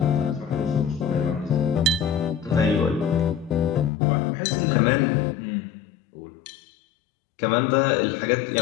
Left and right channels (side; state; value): right; drops out; at 3.9 s